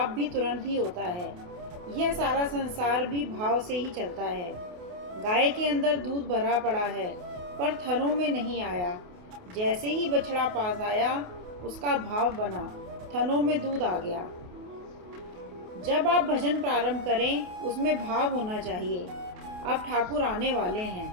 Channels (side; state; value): left; late; 28 ms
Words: भी तुरंत ही होता है। यह सारा संसार भी भाव से ही चलता है। गाय के अंदर दूध भरा पड़ा है पर थनों में नहीं आया। जैसे ही बछड़ा पास आया उसका भाव बना, थनों में दूध आ गया। जब आप भजन प्रारंभ करें उसमें भाव होना चाहिए। अब ठाकुर आने वाले